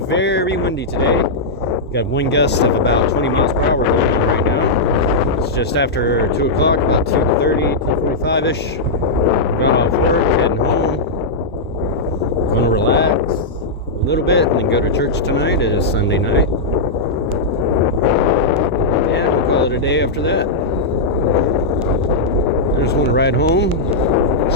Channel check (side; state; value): right; quieter; 3.1 dB